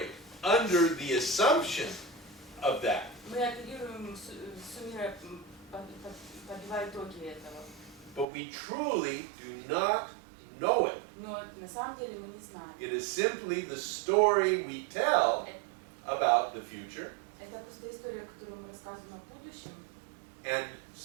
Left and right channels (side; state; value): left; drops out; at 8.2 s